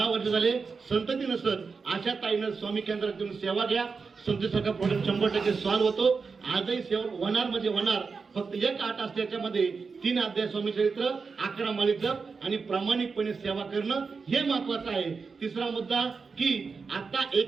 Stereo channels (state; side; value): quieter; left; 4.9 dB